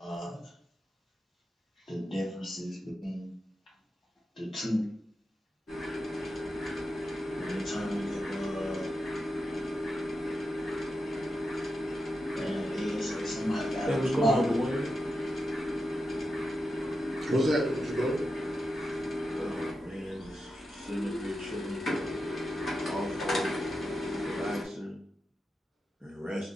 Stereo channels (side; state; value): both; normal; correlation 0.89